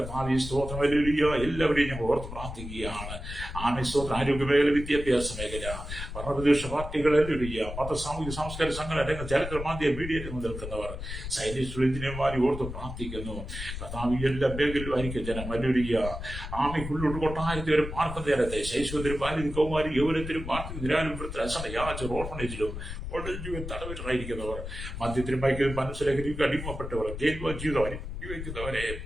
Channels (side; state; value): left; noise; rumble, 8 dB below the sound